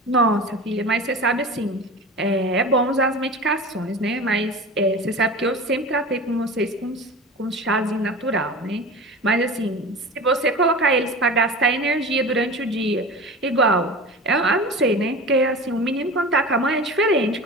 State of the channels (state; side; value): normal; both; correlation 0.33